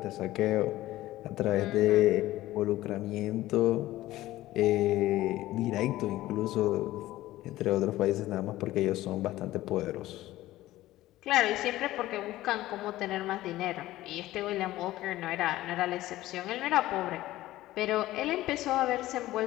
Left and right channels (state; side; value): quieter; right; 16.0 dB